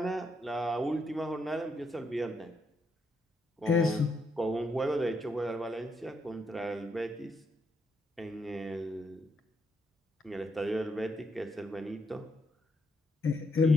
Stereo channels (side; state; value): both; normal; correlation 0.77